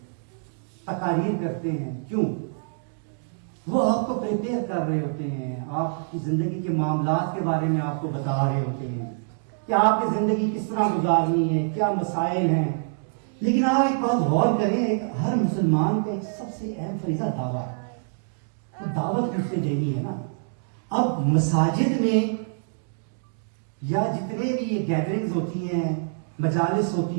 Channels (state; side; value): silent; left; digital silence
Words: تقاریر کرتے ہیں، کیوں؟ وہ آپ کو پریپیئر کر رہے ہوتے ہیں، آپ کی زندگی کے معاملات کے بارے میں آپ کو بتا رہے ہوتے ہیں کہ آپ کی زندگی کس طرح گزارنی ہے، کیا مسائل ہیں۔ لیکن آپ ایک بات غور کریں، ہر مسلمان کا ایک سب سے اہم فریضہ دعویٰ ہے۔ تو دعوت کس سے دینی ہے نا. اب مساجد میں یا جتنے بھی یہ گیدرنگز ہوتی ہیں, مجالس